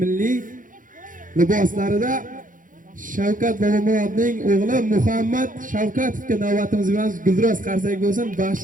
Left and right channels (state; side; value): late; left; 0.39 ms